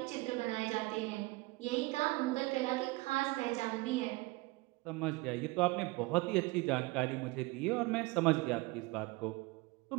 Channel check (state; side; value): quieter; left; 23.3 dB